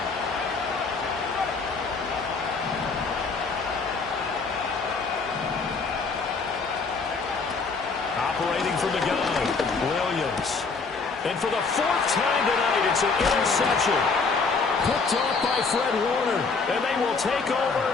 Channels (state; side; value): quieter; right; 4.5 dB